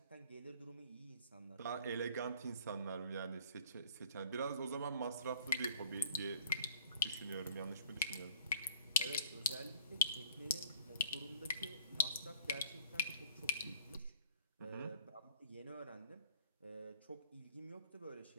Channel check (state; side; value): inverted; both; correlation -0.53